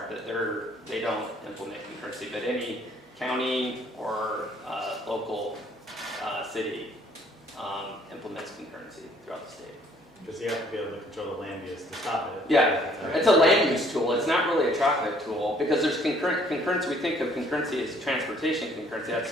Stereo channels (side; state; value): both; normal; correlation 0.61